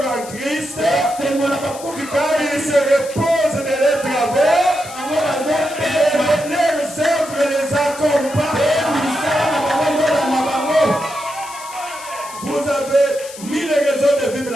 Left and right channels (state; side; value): noise; left; hiss, 15 dB below the sound